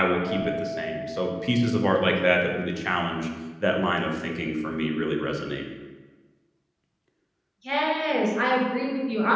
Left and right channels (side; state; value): both; identical; correlation 1.00